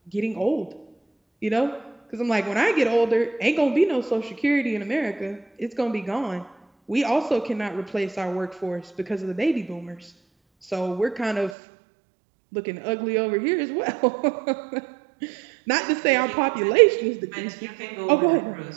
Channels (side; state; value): left; drops out; at 11.6 s